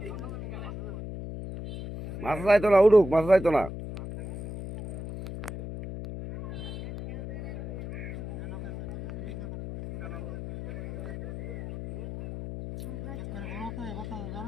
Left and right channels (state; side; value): noise; left; hum, 8 dB below the sound